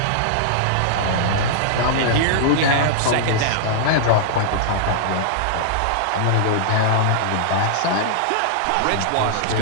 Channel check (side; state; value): both; different; correlation -0.01